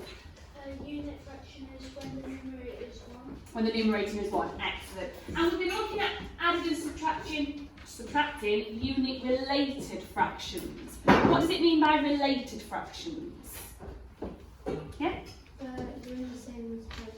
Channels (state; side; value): identical; both; correlation 1.00